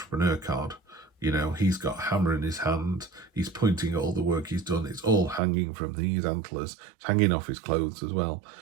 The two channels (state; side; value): drops out; left; at 5.4 s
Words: card. You know, he's got a hammer in his hand. He's pointing at all the work he's done. It's all hanging from these antlers. It's hanging off his clothes as well.